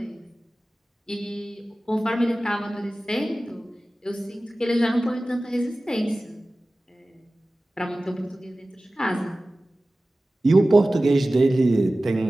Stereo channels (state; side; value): normal; both; correlation 0.97